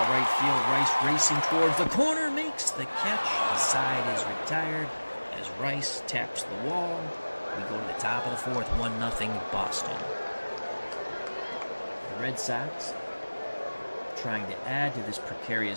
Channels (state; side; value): inverted; both; correlation -1.00